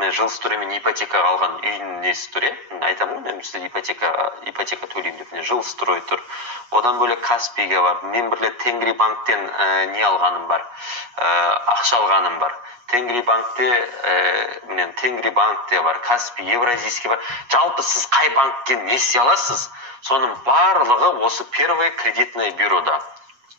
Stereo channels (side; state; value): left; late; 8.3 ms